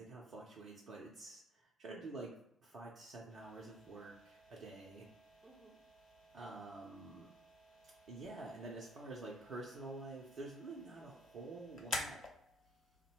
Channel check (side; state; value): both; normal; correlation 0.60